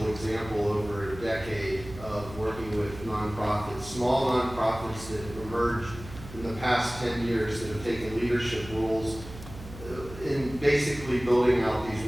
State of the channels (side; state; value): right; noise; hum, 14 dB below the sound